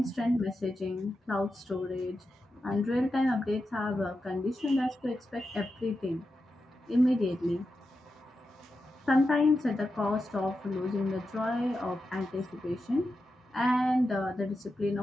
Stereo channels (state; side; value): normal; both; correlation 0.89